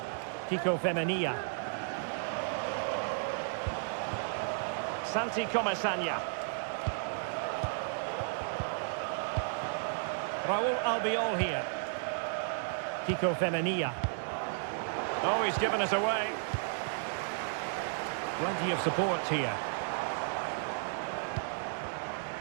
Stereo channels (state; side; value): silent; left; digital silence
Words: Kiko Femenia. Santi Comesaña. Raúl Albiol here. Kiko Femenia. Oh, he's given us away. Plenty of support here.